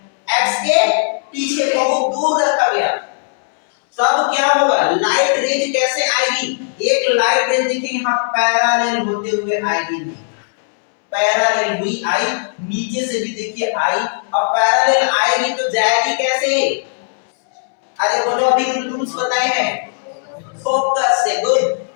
पीछे बहुत दूर रखा गया, तब क्या होगा, लाइट रेज कैसे आएगी, एक लाइट रेज देखिए यहां पैरेलल होते हुए आएगी, पैरेलल हुई आई, नीचे से भी देखिए आई। अब पैरेलल आएगी तो जाएगी कैसे, अरे बोलो अभी रूल्स बताए हैं, फोकस से। गुड,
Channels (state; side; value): silent; right; 68 dB below the other